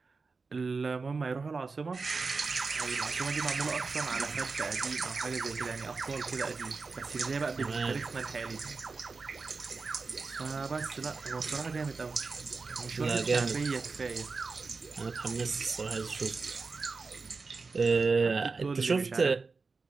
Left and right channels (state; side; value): quieter; left; 4.3 dB